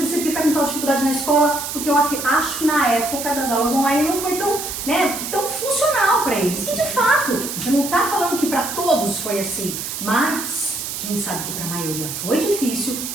que tá com tal dificuldade na escola, porque eu acho que na época das aulas online não foi tão, né, tão funcional para eles. E de fato, a gente não tá falando que para todos foi assim, mas a gente sabe que para a maioria foi difícil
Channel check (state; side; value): noise; right; hiss, 6 dB below the sound